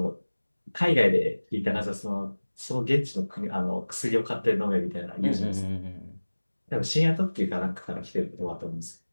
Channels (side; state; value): both; inverted; correlation -1.00